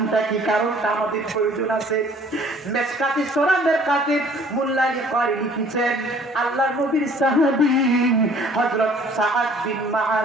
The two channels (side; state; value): both; normal; correlation 0.54